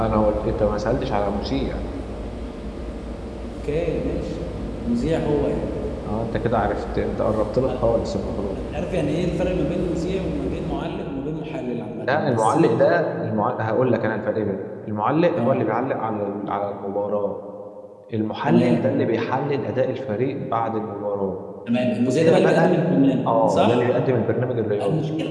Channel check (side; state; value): both; identical; correlation 1.00